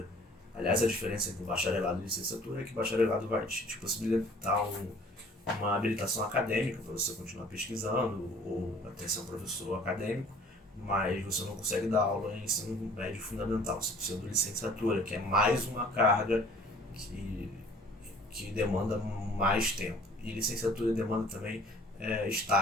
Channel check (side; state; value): both; normal; correlation 0.52